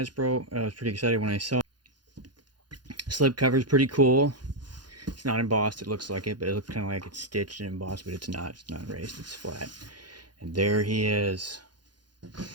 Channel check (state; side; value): late; left; 0.71 ms